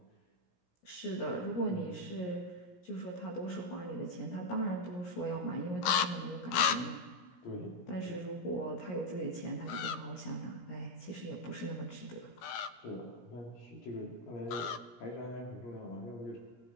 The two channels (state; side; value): late; right; 17 ms